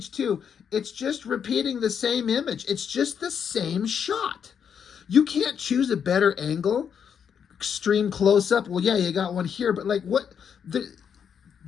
2, it's just repeating the same image. It's just the same shot. You can't choose a better angle, extreme close-up. Well, yeah, you got one here, but like what?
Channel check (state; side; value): quieter; right; 7.6 dB